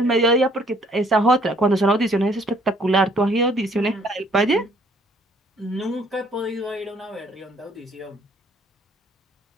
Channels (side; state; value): both; normal; correlation 0.61